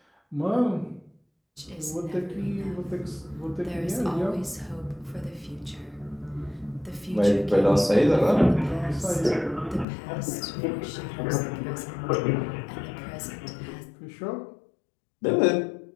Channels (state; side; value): drops out; right; at 9.9 s